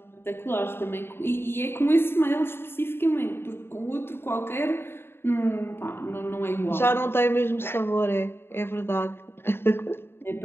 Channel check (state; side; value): late; right; 0.11 ms